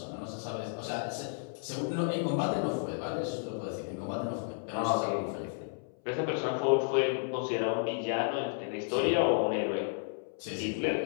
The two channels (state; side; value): silent; right; 56 dB below the other